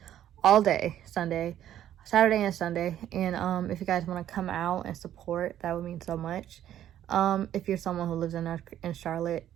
all day Saturday and Sunday. And if you guys want to come out and support, that would mean so much. If you're someone who lives in Charlotte.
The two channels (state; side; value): quieter; left; 11.4 dB